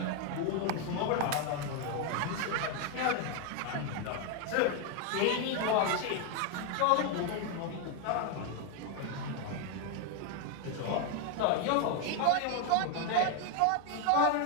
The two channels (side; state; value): both; different; correlation 0.01